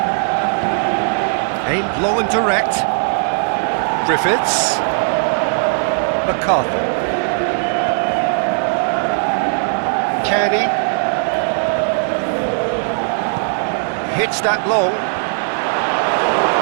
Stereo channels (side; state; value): left; silent; 68 dB below the other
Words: Aimed long and direct. Griffiths. McCarthy. Kearney. Hits that long.